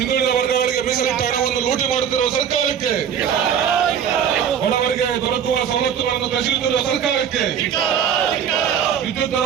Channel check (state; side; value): quieter; left; 8.4 dB